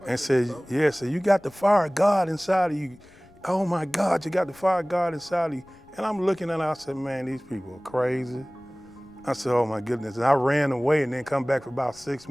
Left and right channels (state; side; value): noise; left; rumble, 27 dB below the sound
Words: And said, yeah, so you got the fire of God inside of you. Oh my God, you got the fire of God inside of you. And I'm looking at her, I said, man, these people are crazy. I said, oh my goodness. And I ran away and then come back for about 6